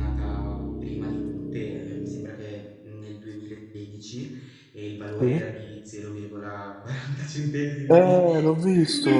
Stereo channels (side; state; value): both; identical; correlation 1.00